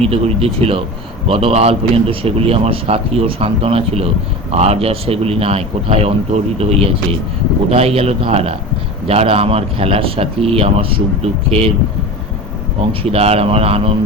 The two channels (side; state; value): both; normal; correlation 0.31